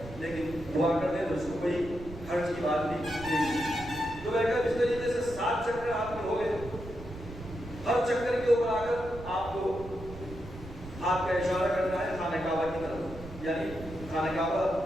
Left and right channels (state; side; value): noise; right; rumble, 14 dB below the sound